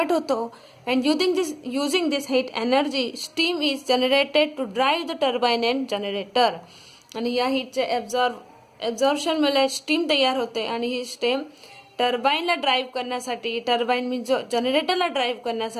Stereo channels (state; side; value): identical; both; correlation 1.00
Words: होतो. And using this heat energy steam is generated to drive the turbine and generator. आणि या हीटचे ॲब्झॉर्प्शनमुळे स्टीम तयार होते आणि ही स्टीम टर्बाईनला ड्राईव्ह करण्यासाठी, टर्बाईन मीन्स जनरेटरला ड्राईव्ह